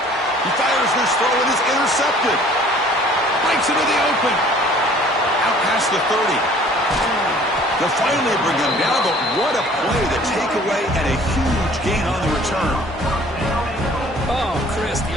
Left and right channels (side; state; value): both; normal; correlation 0.53